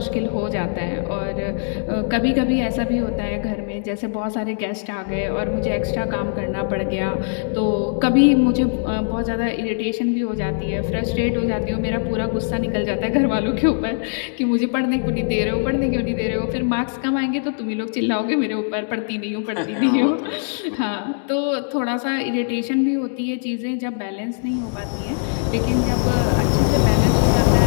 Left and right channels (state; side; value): silent; right; digital silence